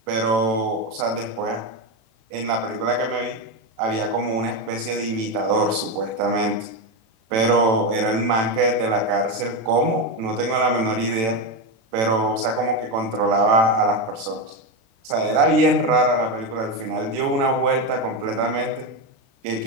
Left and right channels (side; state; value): left; late; 36 ms